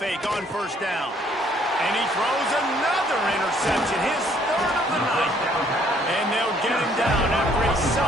on 1st down. And he throws another interception, his 3rd of the night. And they'll get him down after a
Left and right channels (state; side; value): normal; both; correlation 0.63